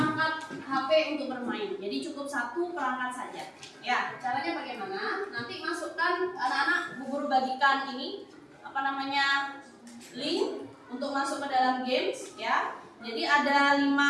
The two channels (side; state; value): both; identical; correlation 1.00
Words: HP untuk bermain. Jadi cukup satu perangkat saja. Ya, caranya bagaimana? Nanti masukkan anak-anak, Bu Guru bagikan ini link untuk masuk ke dalam games ya. Jadi ada